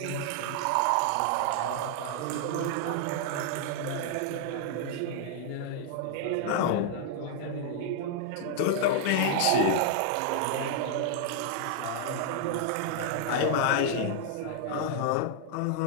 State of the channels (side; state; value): both; different; correlation -0.01